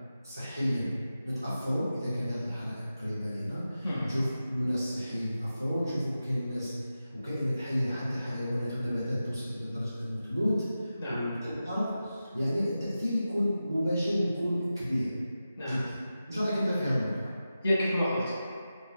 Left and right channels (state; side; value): inverted; both; correlation -0.93